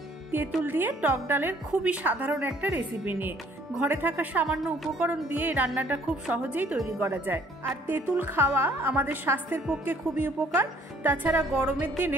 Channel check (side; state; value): both; normal; correlation 0.60